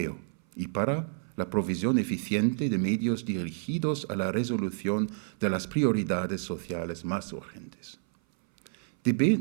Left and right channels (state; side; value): silent; left; 58 dB below the other